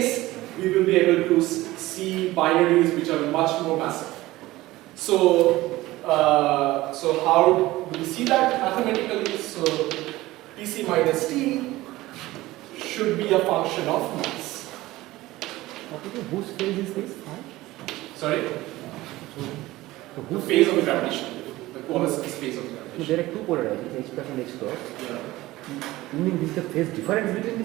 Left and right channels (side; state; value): left; quieter; 17.9 dB